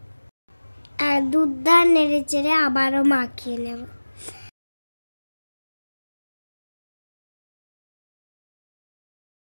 আর দুধটা নেড়ে চেড়ে আবারও মাখিয়ে নেব।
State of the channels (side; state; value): both; inverted; correlation -1.00